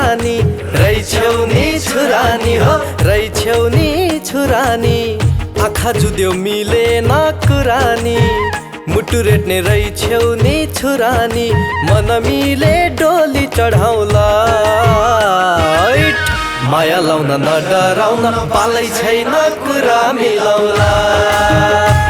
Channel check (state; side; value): identical; both; correlation 1.00